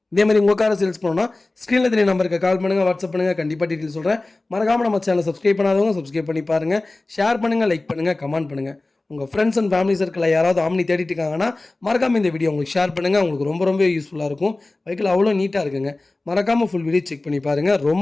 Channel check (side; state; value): right; quieter; 3.0 dB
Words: இதே மாதிரி உங்கள் காரை சேல்ஸ் பண்ணணும்னா ஸ்க்ரீனில் தெரிய நம்பருக்கு கால் பண்ணுங்கள், வாட்ஸ்அப் பண்ணுங்கள். கண்டிப்பாக டீட்டெயில் சொல்கிறேன். மறக்காமல் நம்ம சேனலை சப்ஸ்கிரைப் பண்ணாதவங்க சப்ஸ்கிரைப் பண்ணி பாருங்கள். ஷேர் பண்ணுங்கள், லைக் பண்ணுங்கள், கமெண்ட் பண்ணுங்கள். உங்கள் ஃப்ரெண்ட்ஸ் அண்ட் ஃபேமிலி சர்க்கிளில் யாராவது ஆம்னி தேடிட்டு இருக்காங்கன்னா மறக்காமல் இந்த வீடியோ உங்களுக்கு ஷேர் பண்ணுங்கள். உங்களுக்கு ரொம்ப யூஸ்ஃபுல்லாக இருக்கும். வெஹிக்கிள் அவ்வளோ நீட்டாக இருக்குங்க. மறக்காமல் ஃபுல் வீடியோ செக் பண்ணி பாருங்கள்.